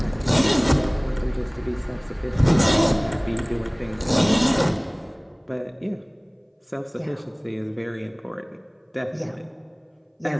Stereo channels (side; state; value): both; identical; correlation 1.00